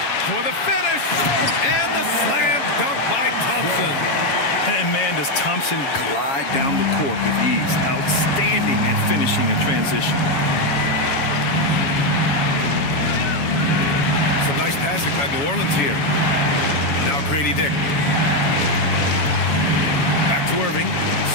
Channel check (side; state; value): right; late; 7.2 ms